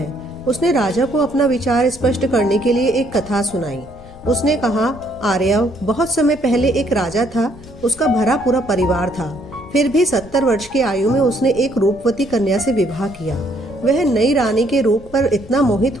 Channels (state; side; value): noise; left; rumble, 20 dB below the sound